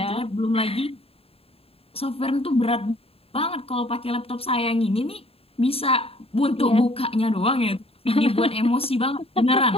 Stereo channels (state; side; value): late; right; 0.28 ms